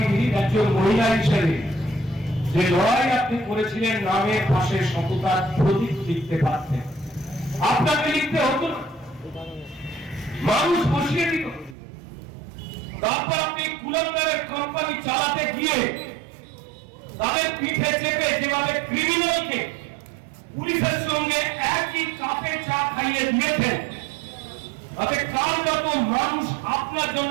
একজন মহিলা হিসেবে যে লড়াই আপনি করেছিলেন, নামের পাশে সততার প্রতীক লিখতে পারতেন। আপনাকে লিখতে হতো না, মানুষ বসিয়ে দিত। তারপর আপনি কুলাঙ্গারের কোম্পানি চালাতে গিয়ে তাদের পিঠে চেপে যেভাবে ক্রিমিনালকে পুলিশের সঙ্গে একই কাপে চা খাইয়ে দিয়েছেন, তাতে কার যত মানুষ আপনার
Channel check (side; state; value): left; drops out; at 11.8 s